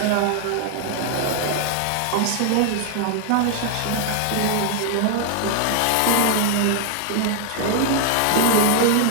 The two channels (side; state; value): both; different; correlation 0.00